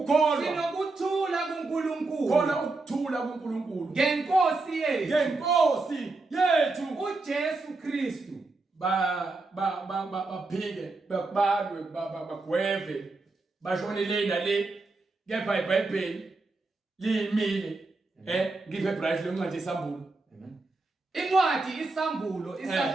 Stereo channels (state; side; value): quieter; left; 3.5 dB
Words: sinokuthula kuNkulunkulu. Khona ukuthula kuNkulunkulu ngenkosi yethu uJesu Kristu. Baphike babalwe bagweve bashonele nale kepha iBhayibheli limile ngiphe bright lencwadi isambulo. Incwadi isambulo